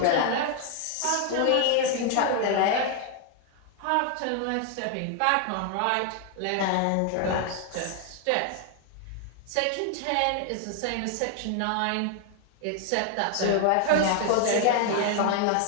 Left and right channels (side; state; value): both; different; correlation 0.00